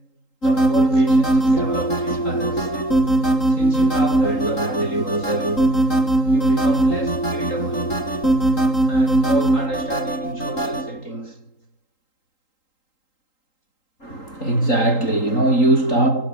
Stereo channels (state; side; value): late; right; 3.8 ms